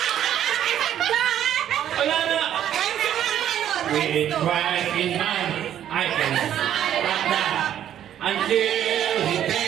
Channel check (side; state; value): left; quieter; 10.7 dB